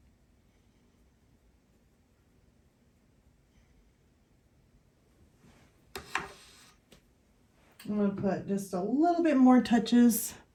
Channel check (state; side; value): identical; both; correlation 1.00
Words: I'm going to put just a little bit more touches